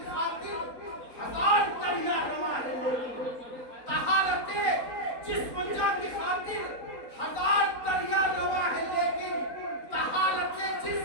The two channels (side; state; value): right; late; 4.1 ms